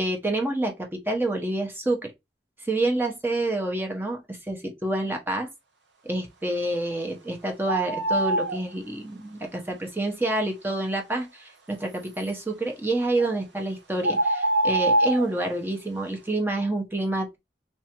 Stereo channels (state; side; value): normal; both; correlation 0.34